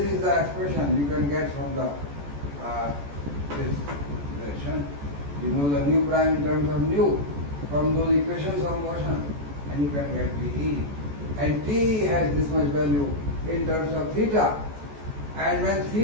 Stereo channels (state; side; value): late; left; 14 ms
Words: is the expression you can get from the this relation. You know the nu prime in terms of nu from those equations of motion, and you can get TE. And T has this much value in terms of theta. And when